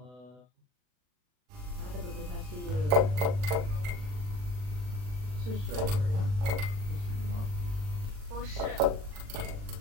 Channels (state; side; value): late; left; 40 ms